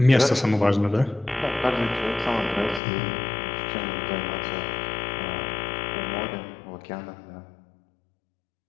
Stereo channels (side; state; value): right; drops out; at 2.8 s